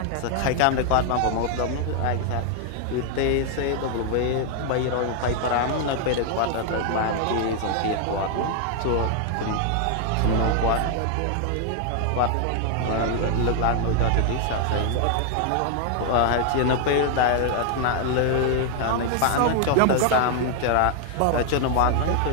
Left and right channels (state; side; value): different; both; correlation 0.00